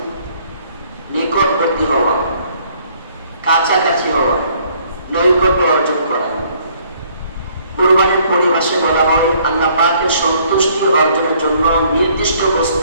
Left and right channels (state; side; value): inverted; both; correlation -0.63